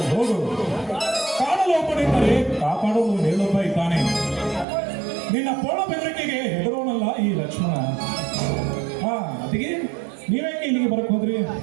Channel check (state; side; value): drops out; left; at 4.7 s